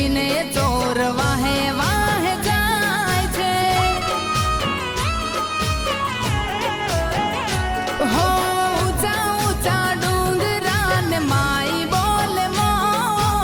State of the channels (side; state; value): both; identical; correlation 1.00